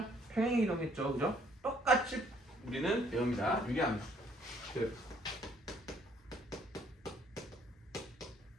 평행 이동했죠. 그죠? 똑같이 우리는 배웁니다. 유리함수 그래프.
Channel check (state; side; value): normal; both; correlation 0.64